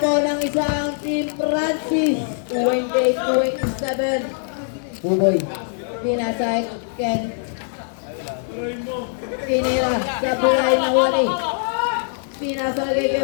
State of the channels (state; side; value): silent; right; 64 dB below the other